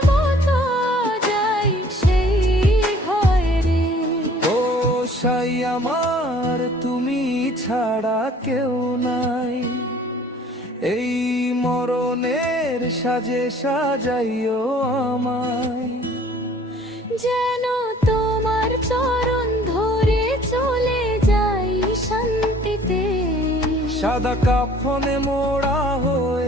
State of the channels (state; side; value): normal; both; correlation 0.54